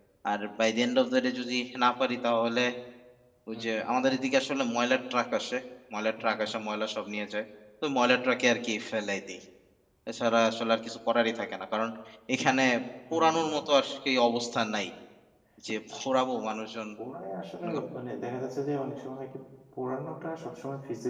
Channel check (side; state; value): both; identical; correlation 1.00